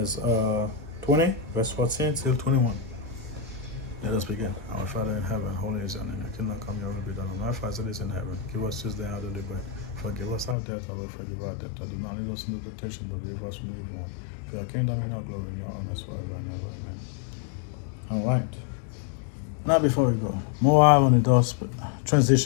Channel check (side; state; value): right; drops out; at 10.6 s